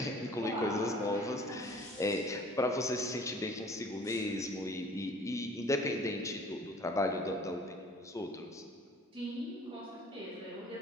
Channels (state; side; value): normal; both; correlation 0.50